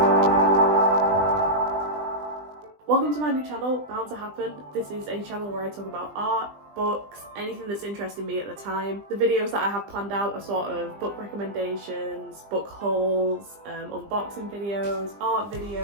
Welcome to my new channel, Bound to Happen. This is a channel where I talk about art, books, anything that's interesting me at the time. The videos that I have planned out are sort of book recommendations, book hauls, unboxing videos, art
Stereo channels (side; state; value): left; late; 20 ms